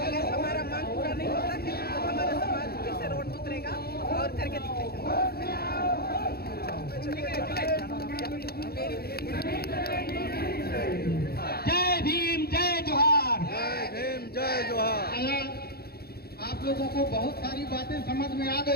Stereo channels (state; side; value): late; right; 0.45 ms